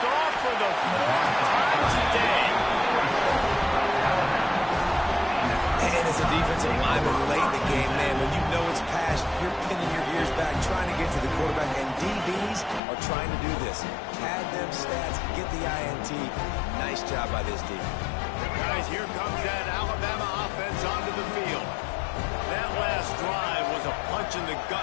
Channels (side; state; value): right; drops out; at 12.8 s